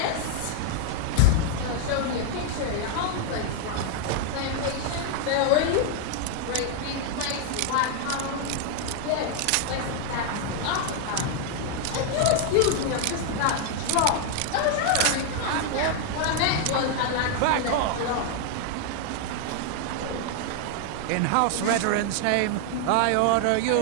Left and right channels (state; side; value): different; both; correlation 0.00